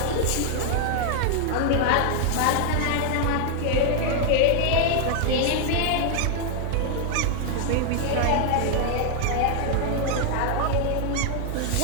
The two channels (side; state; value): both; different; correlation 0.00